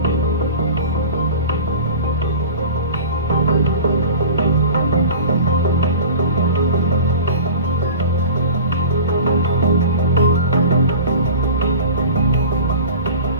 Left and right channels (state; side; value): inverted; both; correlation -0.37